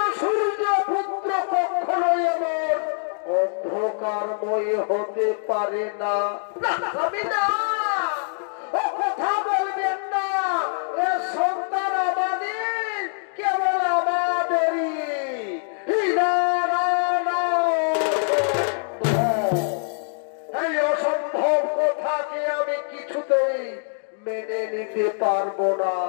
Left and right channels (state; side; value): silent; right; digital silence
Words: সূর্য পুত্র কখনোই এমন অন্ধকারময় হতে পারে না। ও কথা বলবেন না, এ সন্তান আমাদের, কেবল আমাদেরই। এই অসম্ভব কথাকে আমি কিছুতেই মেনে নিতে পারবো না,